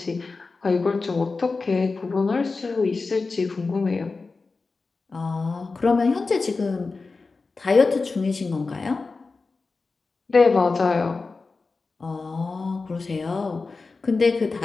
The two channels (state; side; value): quieter; right; 4.0 dB